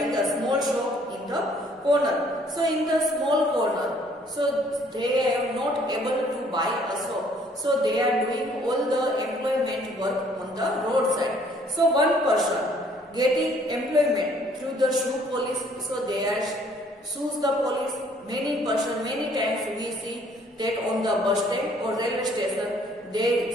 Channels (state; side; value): normal; both; correlation 0.61